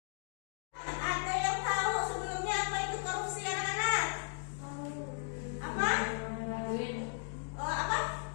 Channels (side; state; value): right; silent; digital silence